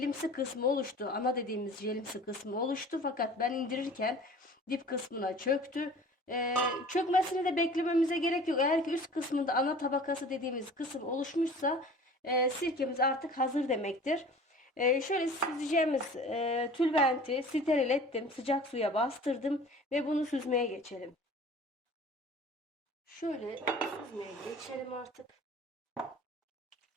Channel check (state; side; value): normal; both; correlation 0.44